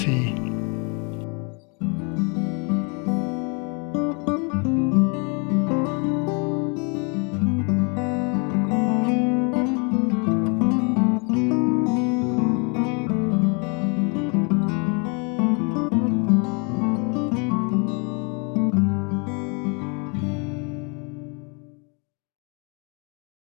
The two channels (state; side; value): quieter; right; 34.5 dB